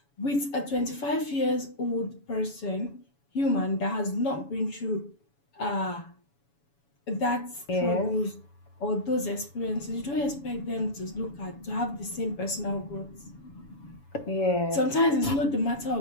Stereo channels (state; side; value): late; right; 7.1 ms